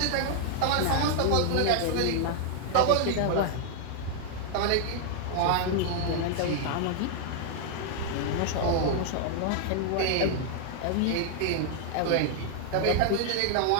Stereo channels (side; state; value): both; different; correlation 0.00